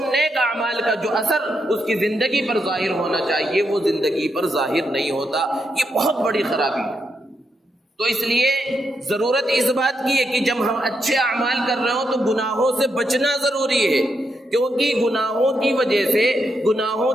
نیک اعمال کا جو اثر اس کی زندگی پر ظاہر ہونا چاہیے وہ زندگی پر ظاہر نہیں ہوتا۔ یہ بہت بڑی خرابی ہے۔ تو اس لیے ضرورت اس بات کی ہے کہ جب ہم اچھے اعمال کر رہے ہوں تو گناہوں سے بچنا ضروری ہے، کیونکہ گناہوں کی وجہ سے، گناہوں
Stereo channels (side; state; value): both; normal; correlation 0.82